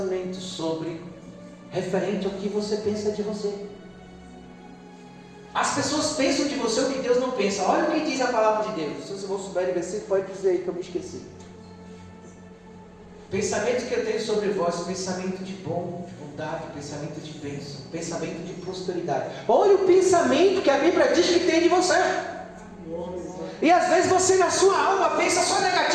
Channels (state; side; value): identical; both; correlation 1.00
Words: sobre, referente ao que você pensa de você. As pessoas pensam de você o que Deus não pensa. Olha o que diz a palavra de Deus. Se você não souber de versículo, pode dizer aí que eu me esqueci. Pensamento que eu tenho sobre vós, pensamento de bom, de bondade, pensamento de bênção, pensamento de prosperidade. Olha o pensamento que a Bíblia diz que tem de você. E às vezes você na sua alma pensa só